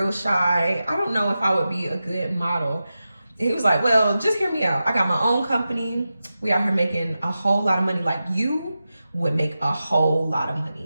shy. I don't know if I would be a good model. He was like, well, just hear me out. I got my own company. We out here making a whole lot of money. Like, you would make a whole lot of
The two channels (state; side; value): inverted; both; correlation -0.92